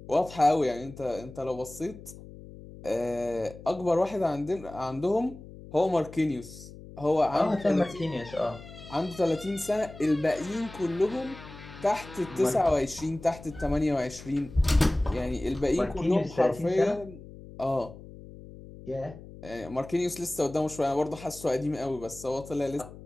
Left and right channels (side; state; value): left; noise; hum, 16 dB below the sound